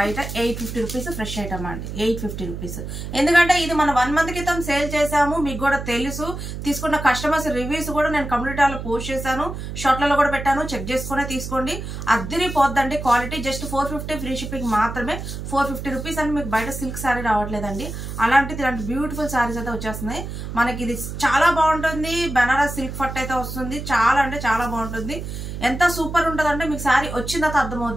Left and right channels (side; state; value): right; noise; hum, 7 dB below the sound